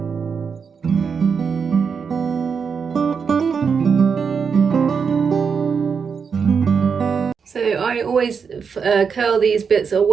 So I always curl these bits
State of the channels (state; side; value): quieter; left; 6.1 dB